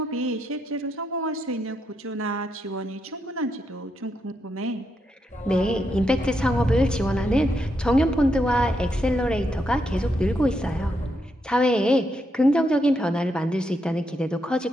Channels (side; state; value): both; normal; correlation 0.81